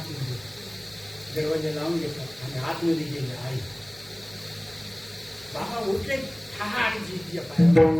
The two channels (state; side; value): noise; right; hum, 24 dB below the sound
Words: दरवाजा लावून घेतात आणि आतमध्ये गेले आई बाबा उठले ठार जिच्या